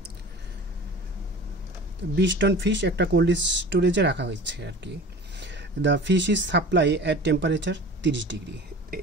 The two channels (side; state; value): both; normal; correlation 0.39